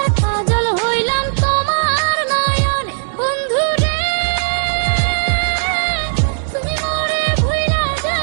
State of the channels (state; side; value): silent; left; digital silence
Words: কাজল হইলাম তোমার নয়নে। বন্ধু রে তুমি মোরে ভুইলা